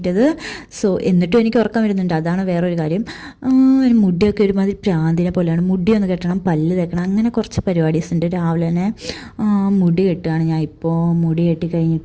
സോ എന്നിട്ടും എനിക്ക് ഉറക്കം വരുന്നുണ്ട്, അതാണ് വേറൊരു കാര്യം. മുടിയൊക്കെ ഒരുമാതിരി പ്രാന്തിനെ പോലെയാണ്. മുടി ഒന്ന് കെട്ടണം, പല്ല് തേക്കണം, അങ്ങനെ കുറച്ച് പരിപാടീസ് ഉണ്ട്. രാവിലെ തന്നെ മുടി കെട്ടുകയാണ് ഞാൻ ഇപ്പോൾ. മുടി കെട്ടി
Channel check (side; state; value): both; identical; correlation 1.00